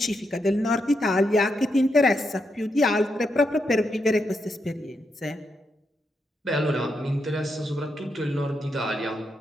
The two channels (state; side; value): normal; both; correlation 0.82